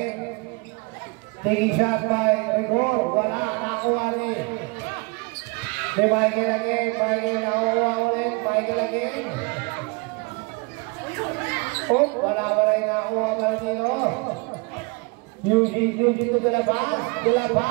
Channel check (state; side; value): quieter; left; 29.1 dB